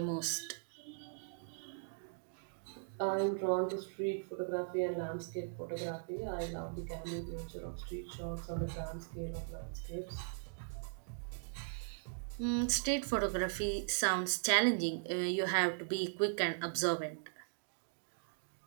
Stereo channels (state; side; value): silent; left; digital silence